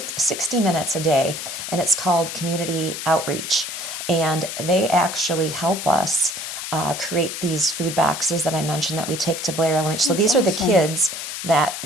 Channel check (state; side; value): noise; left; hiss, 6 dB below the sound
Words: minutes a day, and it's called Community Outreach. And they actually help us create these food boxes that I mentioned that we take to Blair Elementary. So these are the kids that